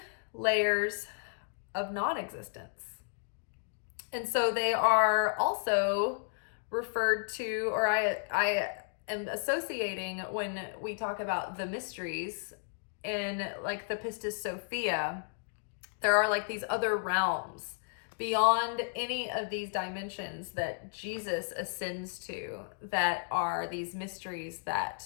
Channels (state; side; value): silent; right; digital silence